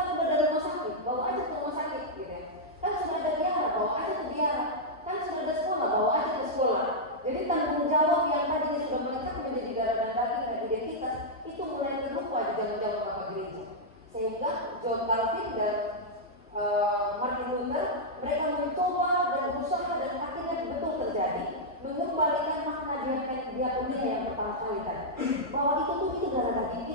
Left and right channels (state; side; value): normal; both; correlation -0.06